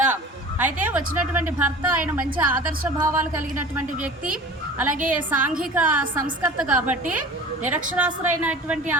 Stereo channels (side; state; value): both; normal; correlation 0.40